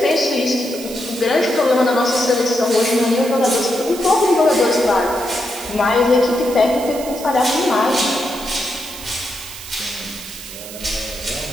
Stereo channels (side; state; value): right; noise; hiss, 13 dB below the sound